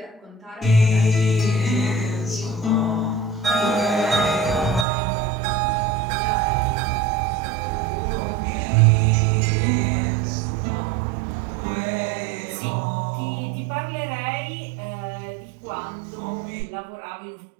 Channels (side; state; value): left; drops out; at 4.9 s